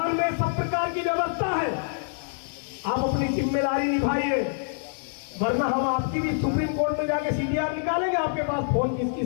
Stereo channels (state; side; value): silent; right; digital silence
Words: में सब प्रकार की व्यवस्था है, आप अपनी जिम्मेदारी निभाइए, वरना हम आपकी भी सुप्रीम कोर्ट में जाके सीडीआर निकालेंगे, आपके पास फोन किस